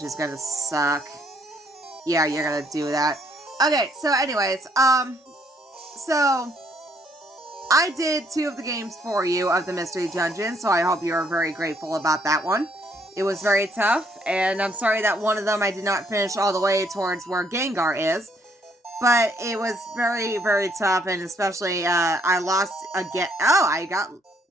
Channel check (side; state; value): both; normal; correlation 0.68